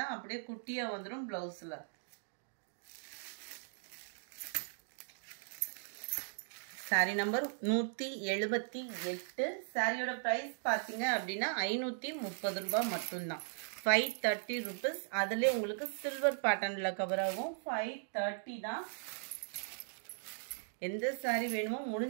தான் அப்படியே குட்டியா வந்துரும் ப்ளவுஸ்ல. Sorry number 178. சாரியோட பிரைஸ் பாத்தீங்க அப்படின்னா 530 ரூபாய் மட்டும்தான். 530 rupees. அதுல உங்களுக்கு சில்வர் பேட்டர்ன்ல கவர் ஆகும். 530 தான். எந்த சாரி வேணுமோ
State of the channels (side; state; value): left; silent; digital silence